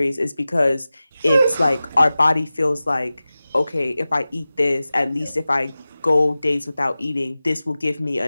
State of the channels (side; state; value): both; inverted; correlation -0.96